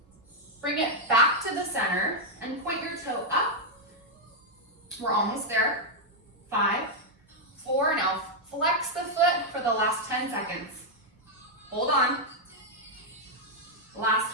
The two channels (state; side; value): normal; both; correlation -0.01